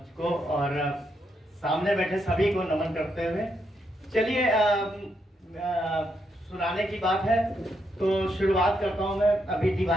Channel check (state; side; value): normal; both; correlation 0.79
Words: को और सामने बैठे सभी को नमन करते हुए चलिए सुनाने की बात है तो शुरुआत करता हूँ मैं। अभी